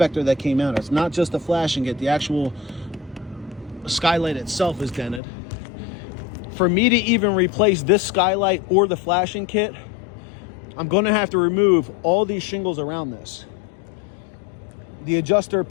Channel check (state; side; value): drops out; right; at 5.2 s